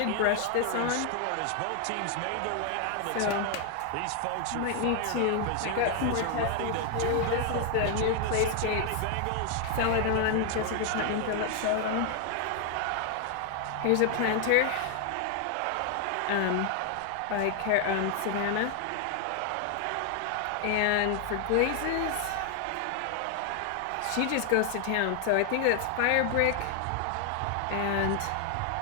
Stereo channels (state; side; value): different; both; correlation 0.00